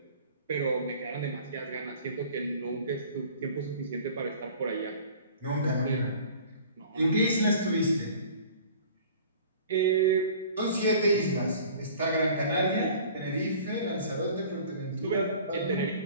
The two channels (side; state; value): both; inverted; correlation -0.47